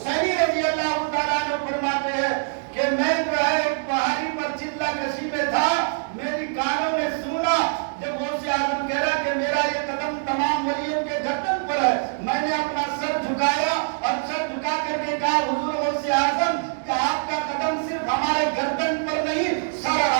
حسینی رضی اللہ تعالیٰ عنہ فرماتے ہیں کہ میں جو ہے ایک پہاڑی پر چلا کشی میں تھا، میری کانوں نے سنا جب غوث اعظم کہہ رہا کہ میرا یہ قدم تمام ولیوں کے گردن پر ہے، میں نے اپنا سر جھکایا اور سر جھکا کر کے کہا حضور غوث اعظم کہ آپ کا قدم صرف ہمارے گردن پر نہیں سر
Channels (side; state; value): left; silent; digital silence